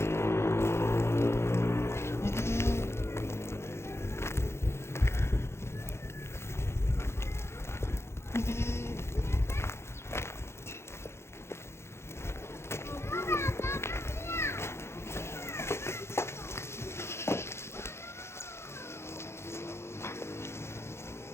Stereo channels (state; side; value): late; right; 0.13 ms